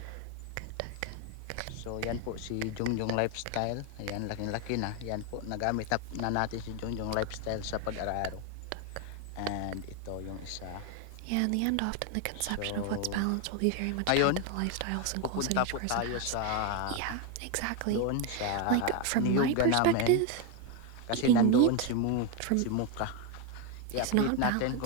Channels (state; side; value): different; both; correlation 0.02